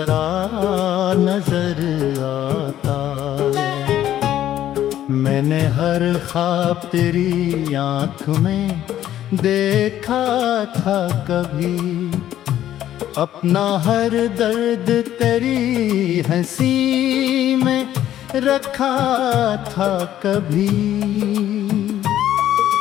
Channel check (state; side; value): quieter; right; 12.0 dB